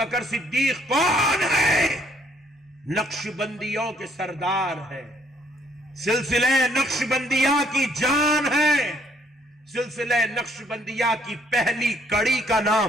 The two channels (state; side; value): normal; both; correlation 0.66